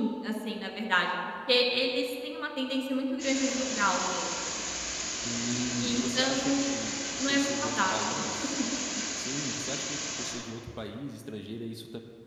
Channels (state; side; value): identical; both; correlation 1.00